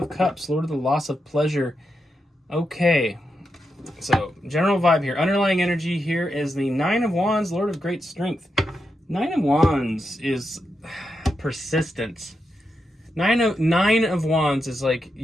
Cups, Lord of the Loss of Pleasure. Okay. So, general vibe here. Underlying energy here is the Nine of Wands, Lord of Great Strength. Nine of Wands is persistence. Nine of Wands is like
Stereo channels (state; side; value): normal; both; correlation 0.86